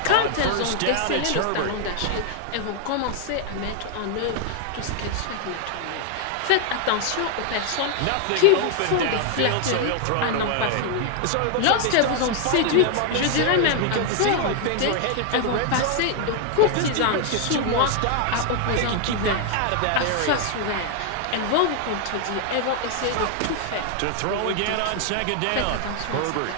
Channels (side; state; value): both; different; correlation 0.00